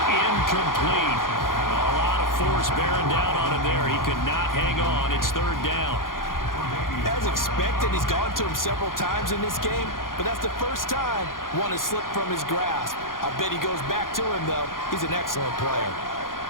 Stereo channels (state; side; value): late; right; 0.90 ms